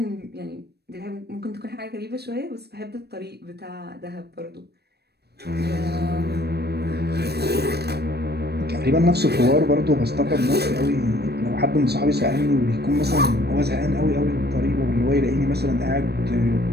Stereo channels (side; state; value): left; late; 0.47 ms